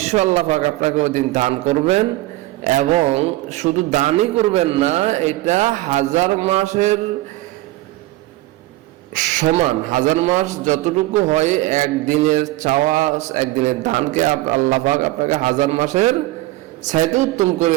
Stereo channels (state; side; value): quieter; left; 17.9 dB